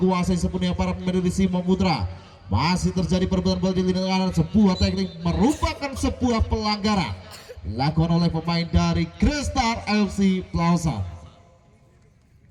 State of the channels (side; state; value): both; identical; correlation 1.00